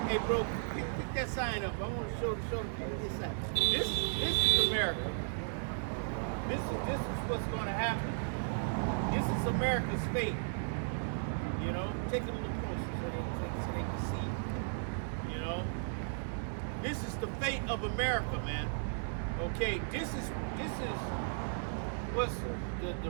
hey, bro, pick that sign up. I want to show the people this sign. This is America. This is what's going to happen. This is America's fate. You know, take it a little closer so they can see. You know. This is the fate of America, man. Okay, this is what's the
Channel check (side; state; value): left; silent; digital silence